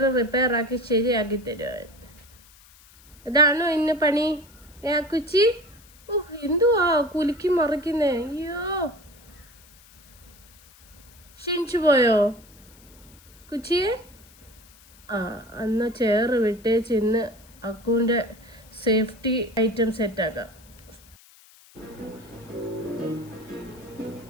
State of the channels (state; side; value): noise; left; hiss, 25 dB below the sound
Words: റിപ്പയർ ആക്കി ശരിയാക്കി തരുവാൻ. ഇതാണോ ഇന്ന് പണി? കുച്ചി, ഓ എന്തുവാ കുലുക്കി മറിക്കുന്നേ? അയ്യോ, ക്ഷീണിച്ചു പോയോ കുച്ചിയെ? അന്ന് ചെയർ വിട്ടേച്ച് ഇന്ന് അക്കുവിൻ്റെ സേഫ്റ്റി ഐറ്റം സെറ്റാക്കാം.